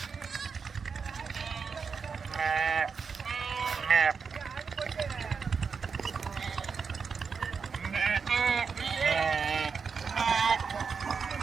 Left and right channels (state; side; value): quieter; left; 5.6 dB